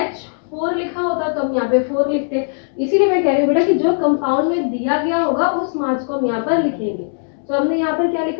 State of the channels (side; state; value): right; silent; digital silence